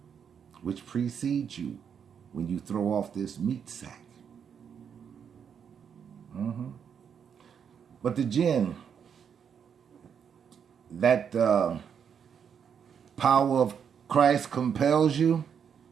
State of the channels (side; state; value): left; quieter; 7.5 dB